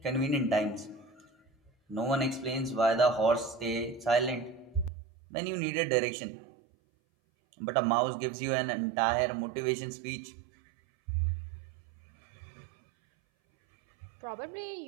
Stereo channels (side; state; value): left; drops out; at 4.9 s